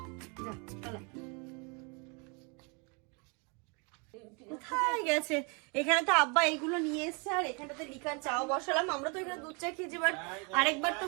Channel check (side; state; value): left; quieter; 33.3 dB